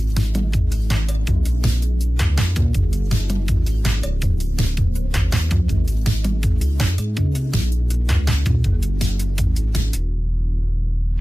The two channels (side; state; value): both; normal; correlation 0.96